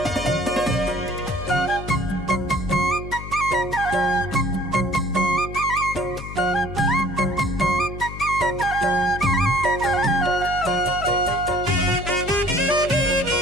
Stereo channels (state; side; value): noise; left; hum, 10 dB below the sound